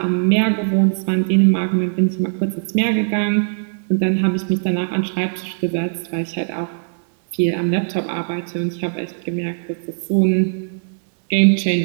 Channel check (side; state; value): left; silent; digital silence